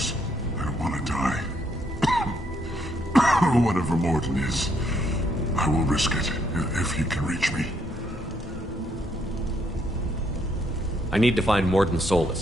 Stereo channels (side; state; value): both; normal; correlation 0.72